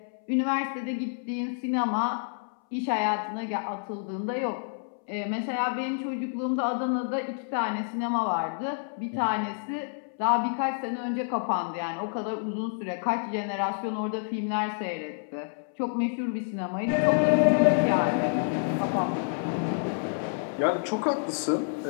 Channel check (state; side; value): silent; right; 59 dB below the other